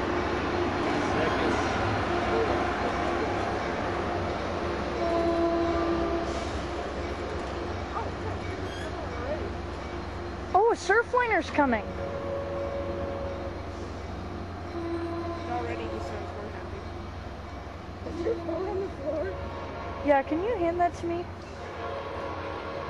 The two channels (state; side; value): identical; both; correlation 1.00